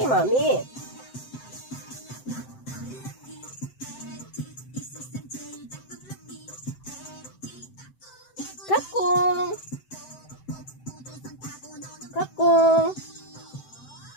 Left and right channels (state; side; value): late; right; 7.8 ms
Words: mami. Kakong. Kakong.